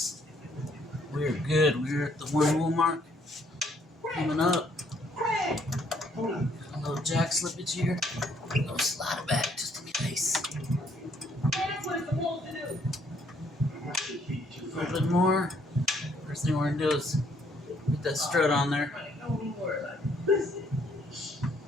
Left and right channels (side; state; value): both; normal; correlation 0.67